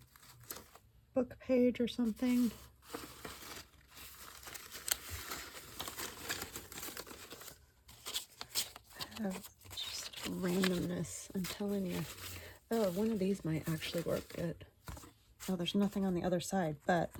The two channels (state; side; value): identical; both; correlation 1.00